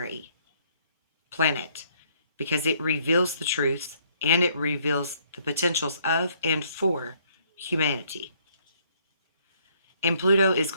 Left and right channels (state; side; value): inverted; both; correlation -0.66